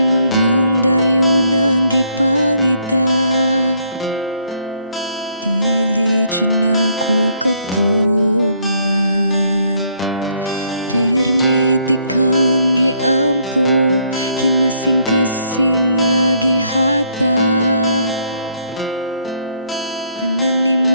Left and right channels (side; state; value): both; inverted; correlation -0.69